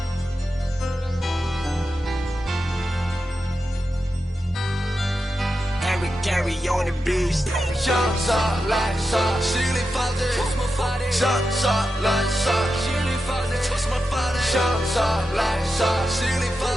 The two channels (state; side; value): normal; both; correlation 0.89